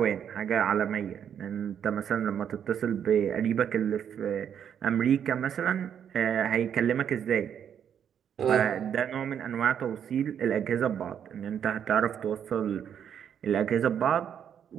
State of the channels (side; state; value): left; quieter; 8.7 dB